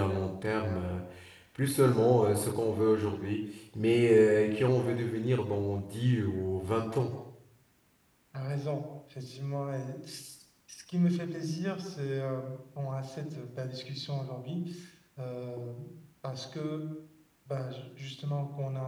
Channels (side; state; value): both; identical; correlation 1.00